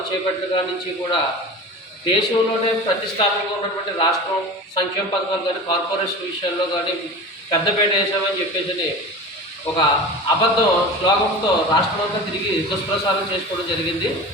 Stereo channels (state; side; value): normal; both; correlation 0.33